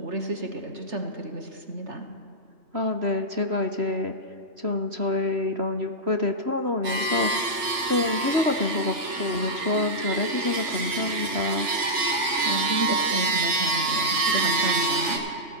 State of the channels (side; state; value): left; late; 3.5 ms